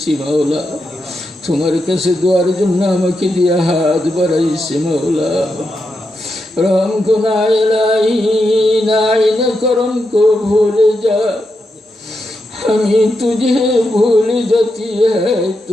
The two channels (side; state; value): both; normal; correlation 0.86